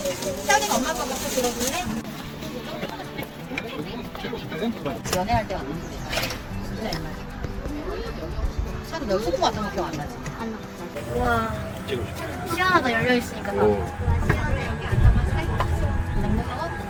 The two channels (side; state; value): both; identical; correlation 1.00